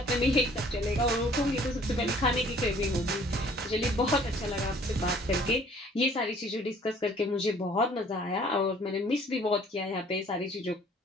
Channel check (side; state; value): both; normal; correlation 0.55